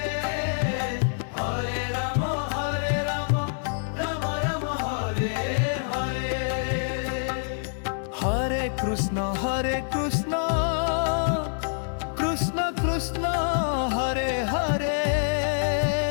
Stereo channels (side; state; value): right; silent; digital silence